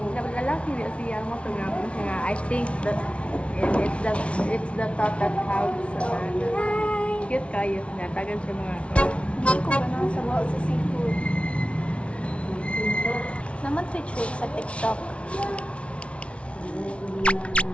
niya siya mo ito nga. I think that it's the thought that counts. Cute kayo. Natagan siya mga Hindi ko ba nang sabaw sa seafood? Naman trick sa TikTok.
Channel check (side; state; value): right; late; 0.061 ms